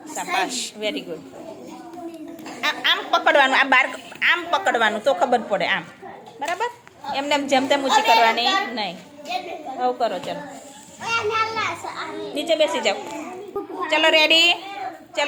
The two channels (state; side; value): identical; both; correlation 1.00